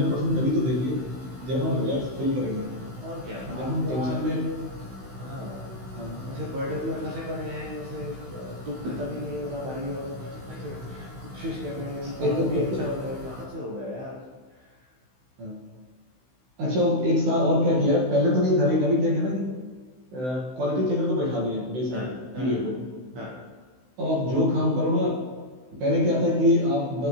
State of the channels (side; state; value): left; late; 16 ms